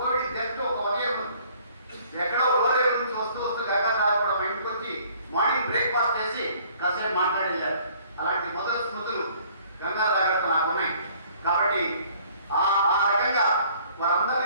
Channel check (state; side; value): inverted; both; correlation -0.57